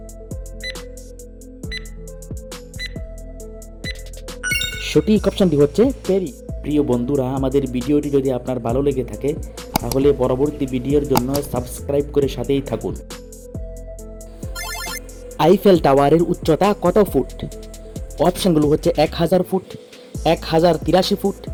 সঠিক অপশনটি হচ্ছে প্যারিস। প্রিয় বন্ধুরা, আমাদের ভিডিওটি যদি আপনার ভালো লেগে থাকে তাহলে পরবর্তী ভিডিওর জন্য সাবস্ক্রাইব করে সাথেই থাকুন। আইফেল টাওয়ারের উচ্চতা কত ফুট? অপশনগুলো হচ্ছে 1000 ফুট, 1083 ফুট,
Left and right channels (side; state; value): both; identical; correlation 1.00